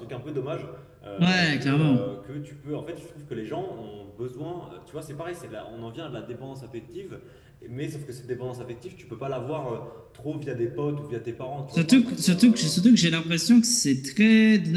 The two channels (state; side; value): identical; both; correlation 1.00